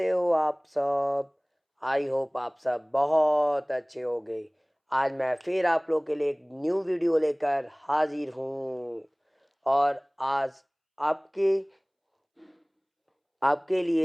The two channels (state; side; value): identical; both; correlation 1.00